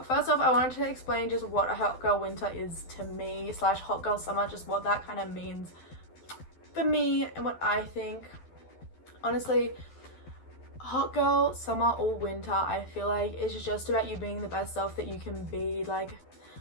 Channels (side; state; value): right; late; 12 ms